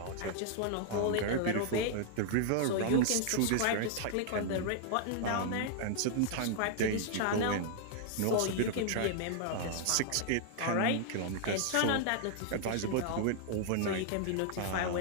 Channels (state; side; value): different; both; correlation -0.01